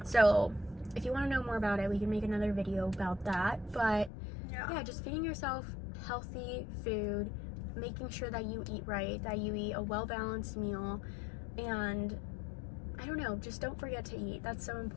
So if you want to know more about it, we can make another video about that. But yeah, just feeding yourself healthy food, making sure that you eat right, that you eat a well-balanced meal, and I don't know, just don't forget to eat. That's so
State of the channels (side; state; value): right; drops out; at 4.1 s